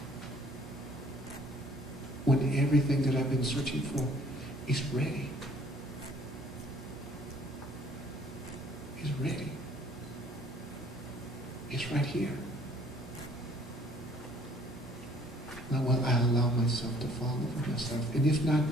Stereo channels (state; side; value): normal; both; correlation 0.58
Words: When everything that I've been searching for is ready. It's ready. It's right here. Now, will I allow myself to fall in love with myself? And if not